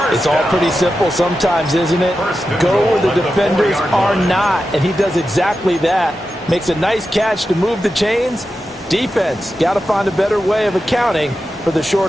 It's all pretty simple sometimes, isn't it? Go where the defenders are not, and he does exactly that. Makes a nice catch to move the chains. Defense, got to find a better way of accounting for the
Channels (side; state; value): both; normal; correlation 0.91